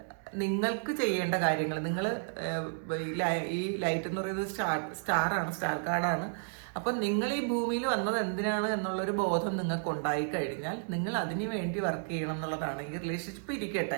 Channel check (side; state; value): left; silent; 56 dB below the other